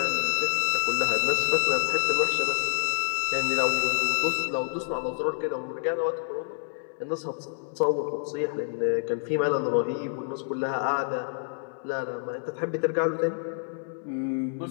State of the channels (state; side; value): silent; right; 60 dB below the other